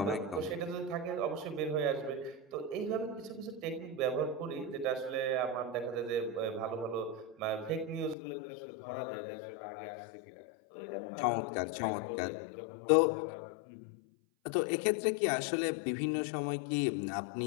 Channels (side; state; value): right; drops out; at 8.2 s